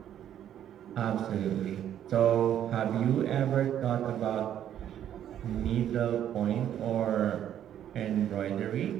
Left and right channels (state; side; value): quieter; left; 10.5 dB